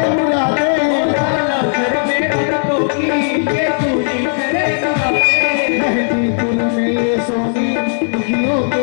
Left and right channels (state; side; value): silent; right; 63 dB below the other